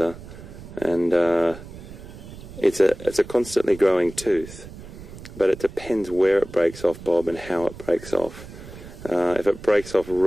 and it's a constantly growing tooth. But it depends where it breaks off, Bob, and how it breaks off. If it breaks off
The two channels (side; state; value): right; noise; rumble, 15 dB below the sound